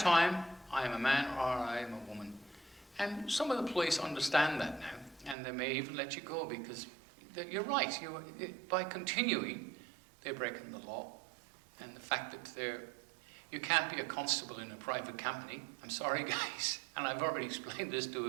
I am a man or I am a woman. And some of the police understand that now, and they may even let you go, because you're right, by continuing, they're breaking the law. And the fact that you can't be a constable in a private company. I'm sorry, guys. And I've already explained this to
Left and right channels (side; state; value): left; drops out; at 5.4 s